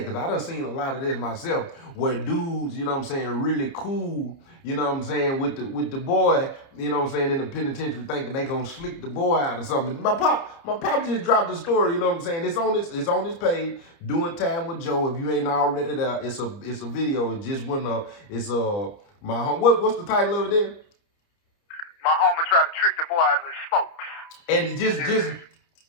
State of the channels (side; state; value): right; late; 29 ms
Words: because I done seen a lot of this myself where dudes, you know what I'm saying, really cool, you know what I'm saying, with the boy, you know what I'm saying, in the penitentiary thinking they gonna slick the boy out or something. My pop just dropped the story, you know what I'm saying? It's on his page, Doing Time with Joe. If you ain't already there, it's a video. It just went up. It's my home. What's the title of it there? My homie tried to trick the boy out of his smoke.